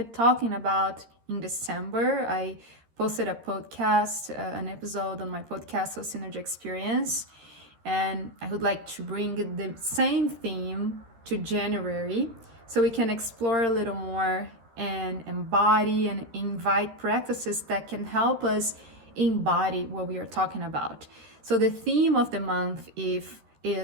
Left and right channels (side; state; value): left; late; 13 ms